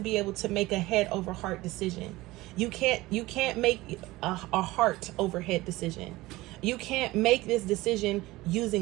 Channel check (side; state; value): left; quieter; 19.2 dB